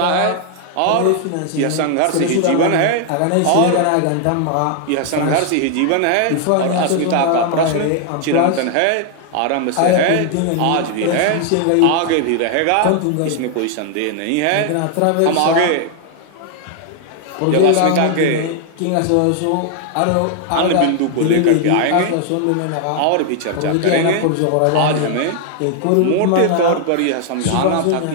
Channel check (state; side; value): different; both; correlation 0.00